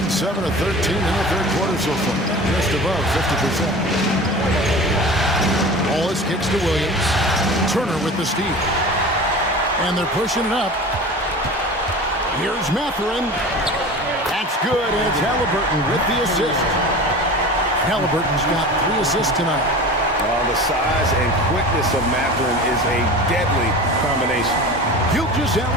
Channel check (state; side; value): normal; both; correlation 0.35